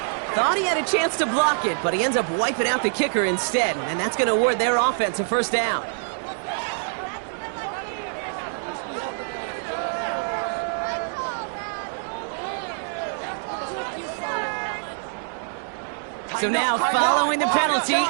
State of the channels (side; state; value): left; silent; digital silence